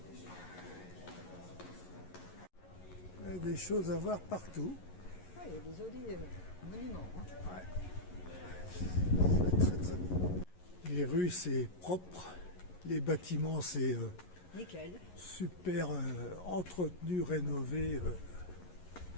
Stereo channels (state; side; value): late; right; 11 ms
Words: Il y a des choses à voir partout. Ah, il y a des jolis monuments. Hein. C'est très très beau. Les rues c'est propre, les bâtiments c'est Nickel. super entretenu, rénové.